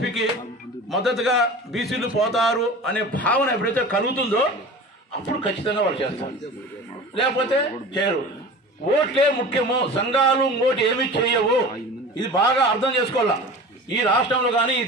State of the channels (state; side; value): normal; both; correlation 0.37